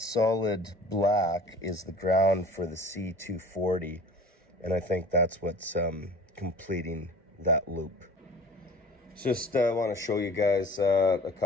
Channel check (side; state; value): both; normal; correlation 0.44